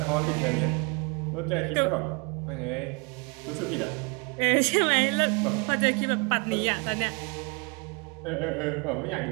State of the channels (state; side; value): quieter; left; 31.9 dB